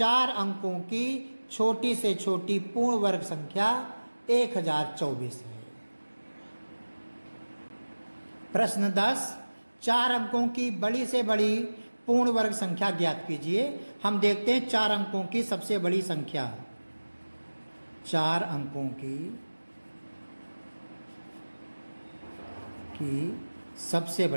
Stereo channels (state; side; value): inverted; both; correlation -1.00